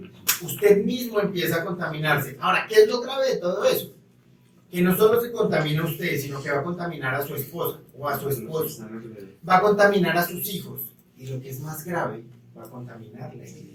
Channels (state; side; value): identical; both; correlation 1.00